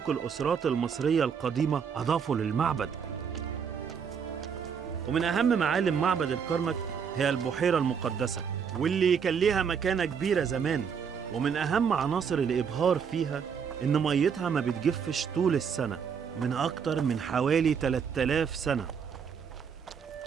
الأسرات المصرية القديمة أضافوا للمعبد. ومن أهم معالم معبد الكرنك هي البحيرة المقدسة، واللي كان ليها مكانة كبيرة زمان. ومن أهم عناصر الإبهار فيها إن ميتها ما بتجفش طول السنة، من أكتر من حوالي 3000 سنة.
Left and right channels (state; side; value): quieter; left; 6.8 dB